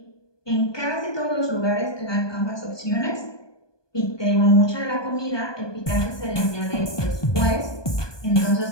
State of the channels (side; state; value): right; late; 1.2 ms